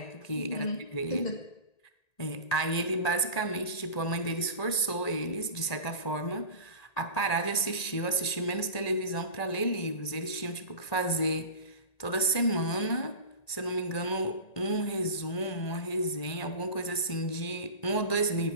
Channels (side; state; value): right; late; 1.9 ms